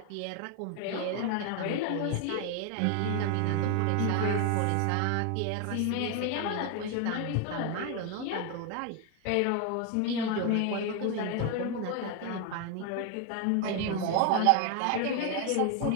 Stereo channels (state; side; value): different; both; correlation 0.01